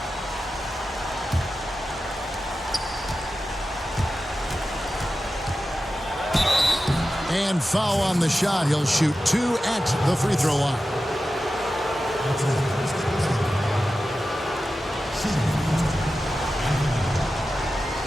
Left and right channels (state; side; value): normal; both; correlation 0.93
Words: And foul on the shot. He'll shoot 2 at the free throw line.